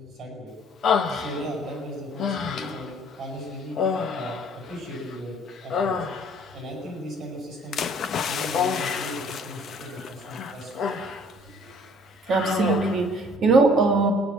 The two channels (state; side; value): normal; both; correlation 0.56